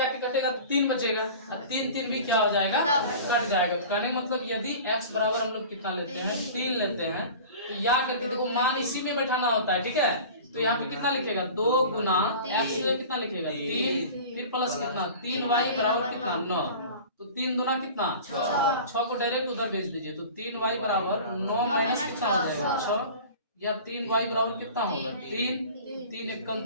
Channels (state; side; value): inverted; both; correlation -0.39